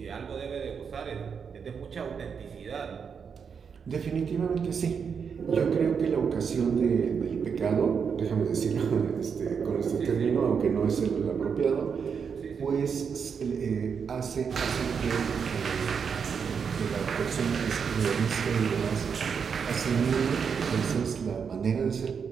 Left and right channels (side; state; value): left; quieter; 6.5 dB